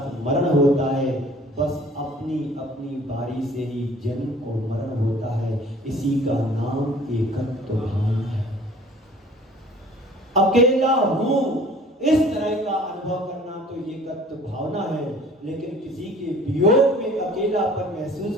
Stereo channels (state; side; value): normal; both; correlation 0.50